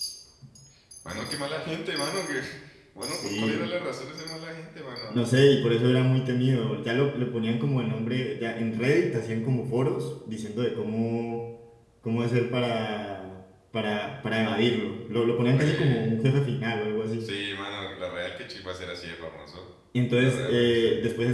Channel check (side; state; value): both; identical; correlation 1.00